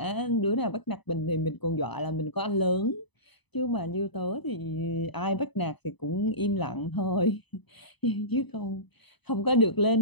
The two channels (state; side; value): late; right; 0.99 ms